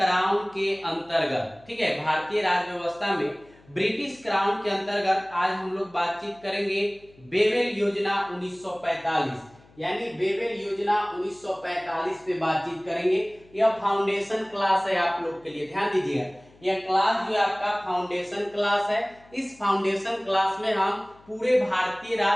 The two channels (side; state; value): left; noise; hum, 27 dB below the sound